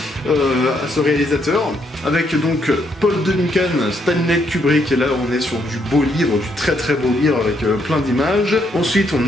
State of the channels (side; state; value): both; normal; correlation 0.74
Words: à ce réalisateur, avec donc Paul Duncan, Stanley Kubrick, et là on est sur du beau livre, du très très beau livre avec plein d'images. Ensuite